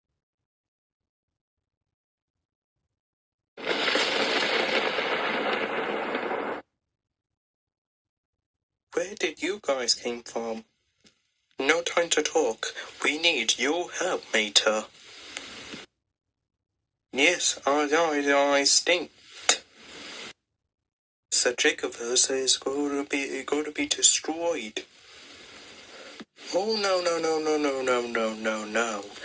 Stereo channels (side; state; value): both; identical; correlation 1.00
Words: Where did you guys came from? No time to talk. We need your help, Mater. Yes, I stink. Sir Jacobus is going to be destroyed. Oh no.